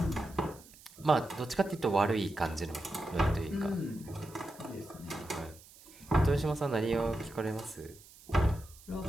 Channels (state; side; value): noise; right; hiss, 22 dB below the sound